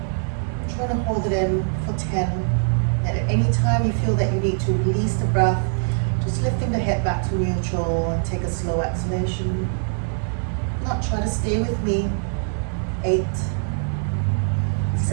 Try to hold it in for 10. And at any time you feel that you need to release the breath, just lifting the head back to neutral and take a slow exhalation. Now try to stay with me. 8,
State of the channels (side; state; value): left; silent; digital silence